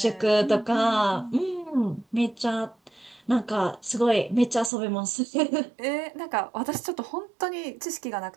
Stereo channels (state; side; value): drops out; left; at 4.7 s